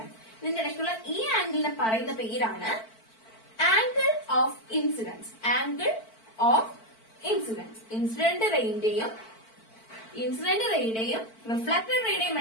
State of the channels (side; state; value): right; late; 4.5 ms